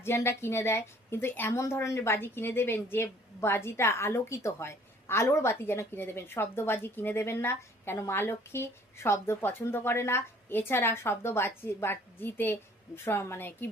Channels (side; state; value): both; normal; correlation 0.56